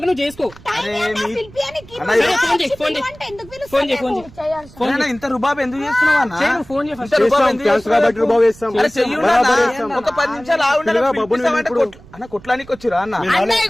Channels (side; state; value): right; noise; rumble, 21 dB below the sound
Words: నువ్వు చేసుకో ఇంత రుబాబు ఎందుకు చేస్తున్నావు అన్న ఫోన్ ఒక 10 నిమిషాలు అన్న కొట్లానికి వచ్చిరా అన్న